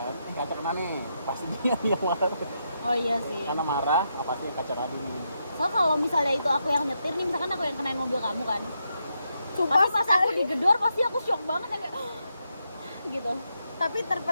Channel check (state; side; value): inverted; both; correlation -0.82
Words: Kaca kena nih, pasti dia yang marah. Oh iya sih. Karena marah, apa sih yang kaca kena dulu. So kalau misalnya itu aku yang nyetir nih, misalkan aku yang kenain mobil kamu kan. Sumpah Pasti pas aku digedor pasti aku shock banget yang kayak gitu. tapi